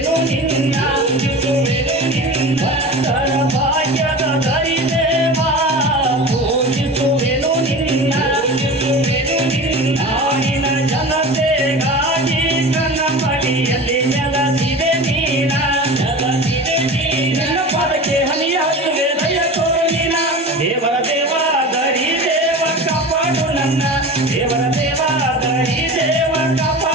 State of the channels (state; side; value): normal; both; correlation 0.33